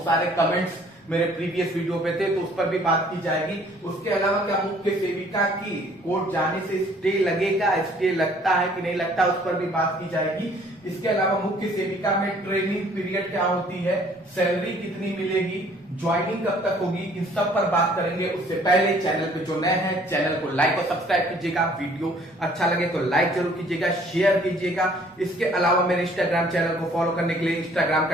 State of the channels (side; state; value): both; normal; correlation 0.58